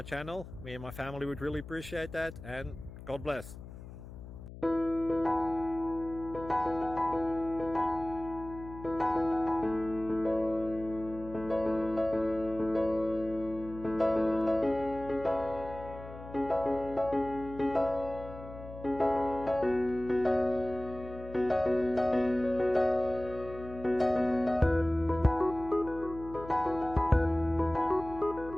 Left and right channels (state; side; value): noise; left; hum, 14 dB below the sound